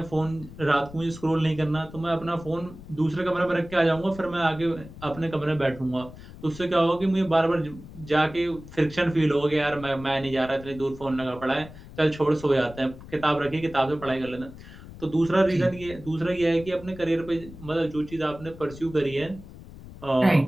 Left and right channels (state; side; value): noise; left; rumble, 16 dB below the sound